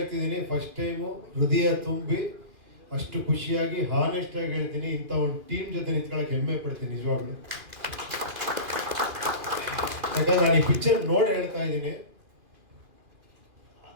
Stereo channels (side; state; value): left; late; 2.5 ms